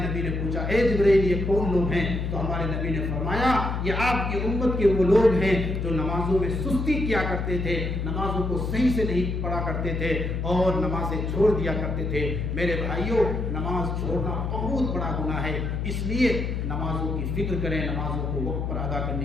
نے پوچھا اے جبرائیل یہ کون لوگ ہیں؟ تو ہمارے نبی نے فرمایا یہ آپ کی امت کے وہ لوگ ہیں جو نمازوں میں سستی کیا کرتے تھے، نمازوں کو صحیح سے نہیں پڑھا کرتے تھے اور نمازیں چھوڑ دیا کرتے تھے۔ میرے بھائیوں، نماز چھوڑنا بہت بڑا گناہ ہے، اس لیے نمازوں کی فکر کریں، نمازوں کو وقت پر ادا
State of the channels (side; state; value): left; noise; hum, 2 dB below the sound